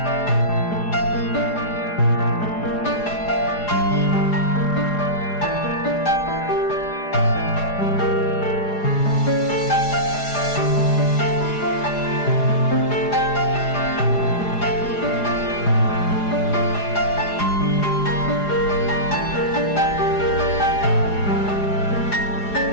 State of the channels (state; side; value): late; right; 4.9 ms